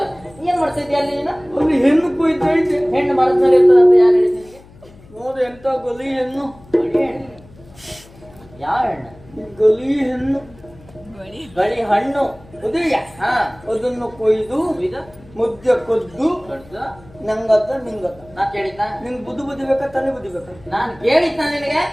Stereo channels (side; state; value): left; noise; hum, 24 dB below the sound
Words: ಏನ್ ಮಾಡ್ತಿದ್ಯಾ ಅಲ್ಲಿ ನೀನು? ಒಂದು ಹೆಣ್ಣು ಕೊಯ್ತಾ ಇದ್ದೆ. ಹೆಣ್ಣು ಮರದಲ್ಲಿ ಇರ್ತದೆ ಅಂತ ಯಾರು ಹೇಳಿದ ನಿನಗೆ? ನೋಡು ಎಂತ ಗಲಿ ಹೆಣ್ಣು. ಗಳಿ ಹೆಣ್ಣು? ಯಾವ ಹೆಣ್ಣು? ಗಲಿ ಹೆಣ್ಣು. ಗಳಿ ಹಣ್ಣು ಉದಯ. ಹಾ, ಅದನ್ನು ಕೊಯ್ದು ಇದು ಮುದ್ದೆ ಕೊದ್ದು ದೊಡ್ಡದು. ನಂಗತ್ತ ನಿಂಗತ್ತ. ನಾ ಕೇಳಿದ್ದ? ನಿಂಗೆ ಬುದ್ಧಿ ಬುದ್ಧಿ ಬೇಕಾ ತಲೆ ಬುದ್ಧಿ ಬೇಕಾ? ನಾನು ಕೇಳಿದ್ದ ನಿನಗೆ?